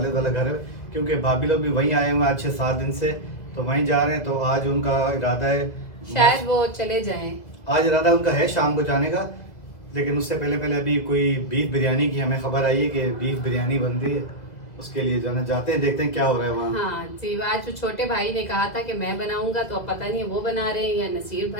वाला घर है। क्योंकि भाभी लोग भी वहीं आए हुए हैं आज 6-7 दिन से, तो वहीं जा रहे हैं। तो आज उनका इरादा है, शायद वो चले जाएं। आज इरादा उनका है शाम को जाने का। लेकिन उससे पहले पहले अभी कोई बीफ बिरयानी की हमें खबर आई है कि बीफ बिरयानी बन रही है। उसके लिए जाना जाते हैं, देखते हैं क्या हो रहा है वहाँ। हाँ जी, आज जो छोटे भाई ने कहा था कि मैं बनाऊंगा, तो अब पता नहीं वो बना रहे हैं या नसीर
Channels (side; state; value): right; late; 2.0 ms